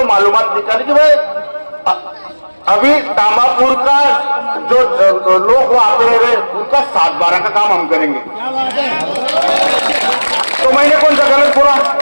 मालूमात निकाली कि भाई अभी तामापुर का जो लोग वहां पे रह रहे उनका 7-12 का काम हम करेंगे। तो मैंने कौन सा गलत बोला?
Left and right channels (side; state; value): both; inverted; correlation -1.00